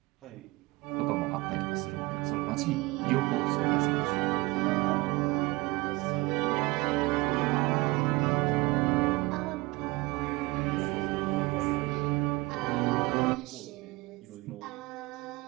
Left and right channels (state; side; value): quieter; left; 23.0 dB